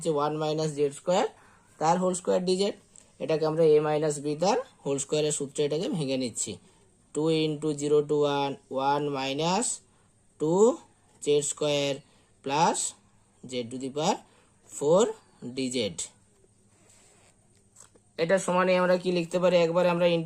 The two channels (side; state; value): both; identical; correlation 1.00